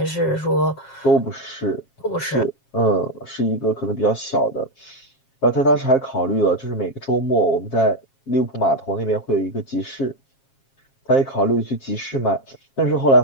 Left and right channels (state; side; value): late; right; 7.4 ms